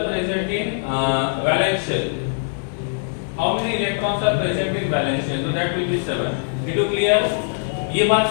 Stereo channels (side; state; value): right; silent; digital silence